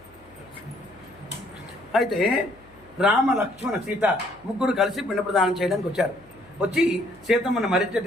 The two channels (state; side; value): noise; left; hum, 28 dB below the sound